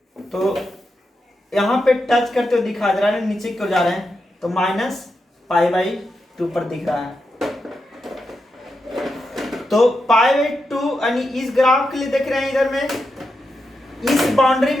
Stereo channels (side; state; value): both; normal; correlation 0.87